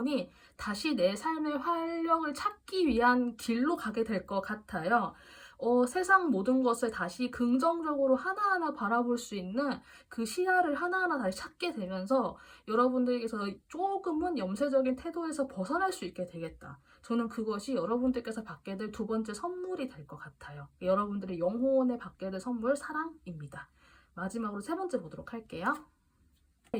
다시 내 삶의 활력을 찾기 위한 길로 가게 될 것 같아요. 세상 모든 것을 다시 긍정적으로 하나하나 바라볼 수 있는 그 시야를 하나하나 다시 찾게 되면서 여러분들께서 조금은 염세적인 태도에서 벗어날 수 있게 되겠다. 저는 그것이 여러분들께서 받게 될 두 번째 선물이 될 것 같아요. 여러분들의 영혼에 받게 될 선물, 사랑입니다. 마지막으로 세 번째 보도록 할게요.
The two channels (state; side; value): identical; both; correlation 1.00